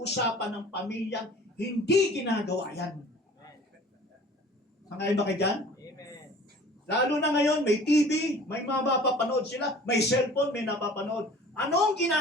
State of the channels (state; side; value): normal; both; correlation 0.47